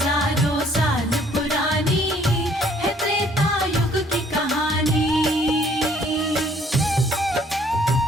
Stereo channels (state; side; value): normal; both; correlation 0.61